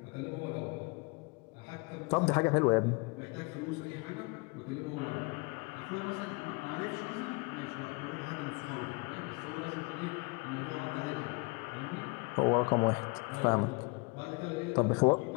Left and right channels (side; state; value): right; quieter; 29.3 dB